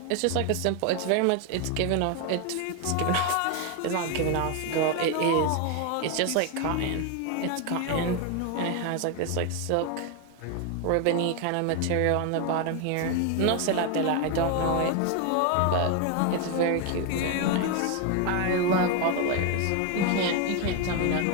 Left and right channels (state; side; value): different; both; correlation 0.01